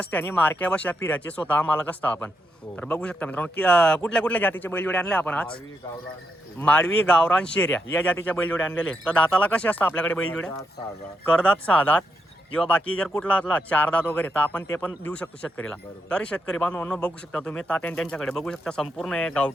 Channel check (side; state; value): both; normal; correlation 0.82